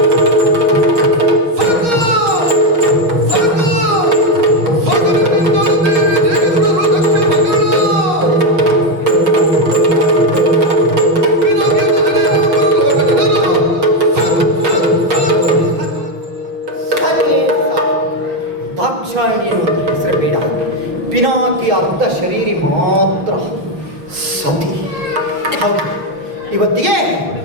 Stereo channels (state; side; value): late; left; 6.4 ms